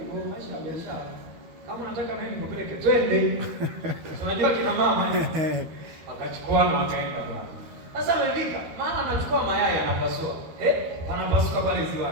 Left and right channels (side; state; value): left; late; 13 ms